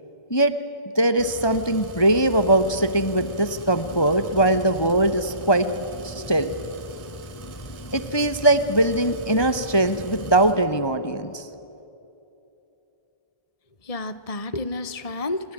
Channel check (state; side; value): late; right; 1.2 ms